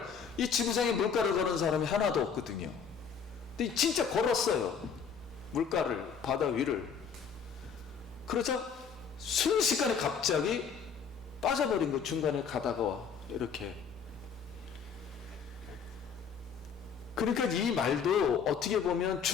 이 지구상에 물가를 걸은 사람이 하나도 없거든요. 근데 진짜 걸었어요. 물가를, 바다 위를. 그러자 순식간에 갑자기 빠져버린 거, 중간에 가다가 이렇게. 그러니까 이 말도 어떻게 보면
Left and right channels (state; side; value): quieter; right; 6.5 dB